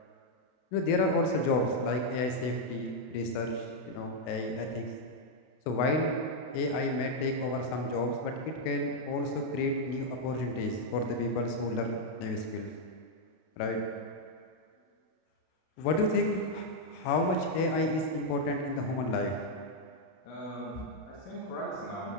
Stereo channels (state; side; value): late; right; 32 ms